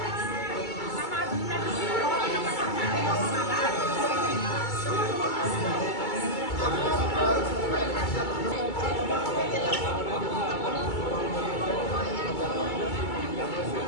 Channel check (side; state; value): right; late; 2.3 ms